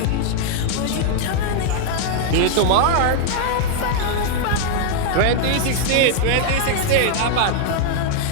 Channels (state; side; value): different; both; correlation 0.00